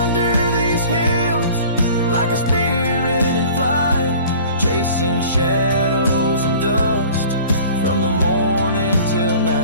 these hills like a spirit in flight, chasing shadows and dust from the morning till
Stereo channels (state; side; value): inverted; both; correlation -0.46